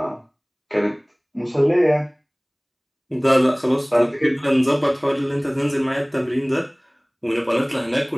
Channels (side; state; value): both; identical; correlation 1.00